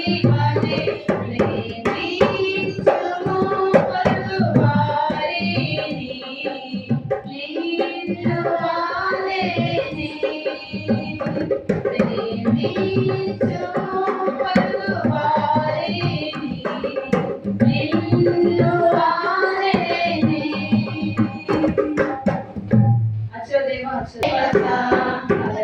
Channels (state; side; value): identical; both; correlation 1.00